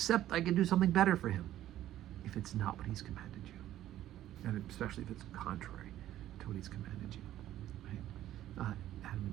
I can do something better for him, if it's not what he's commanded you, and especially if it's contrary to what he's commanded you, right? Adam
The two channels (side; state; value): left; quieter; 13.0 dB